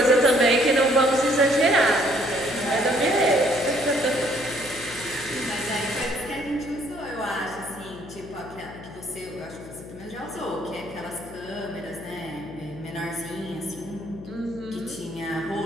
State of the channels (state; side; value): noise; left; hum, 15 dB below the sound